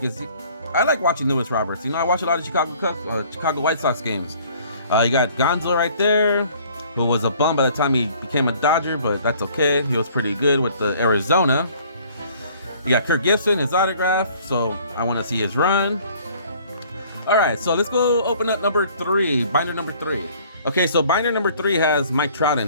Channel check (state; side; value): inverted; both; correlation -0.55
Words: is, I like watching Louis Roberts. You know, I watch a lot of Chicago White Sox games. You got Gonzo right there, who was a bum by the time he became a Dodger, but that's okay. He was pretty good with the Arizona. You got Kirk Gibson, his autograph, so I want to see his run. All right, so let's go open up number 3, binder number 3. Okay, so binder number 3 has Mike Trout